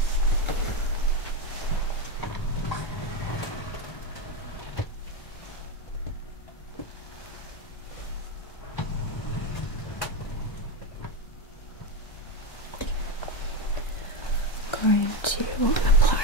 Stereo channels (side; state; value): right; late; 1.3 ms